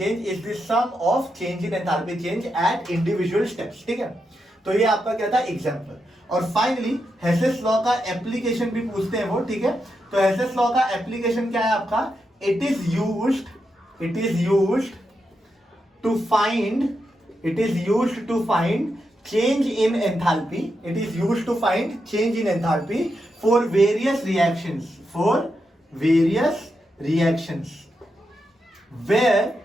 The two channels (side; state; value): both; normal; correlation 0.85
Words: is the sum of change in enthalpy change at individual steps, ठीक है। तो ये आपका क्या था? एग्जांपल। और फाइनली हेसेस लॉ का एप्लीकेशन भी पूछते हैं वो, ठीक है। तो हेसेस लॉ का एप्लीकेशन क्या है आपका? It is used to find change in enthalpy. It is used to find change in enthalpy for various reactions where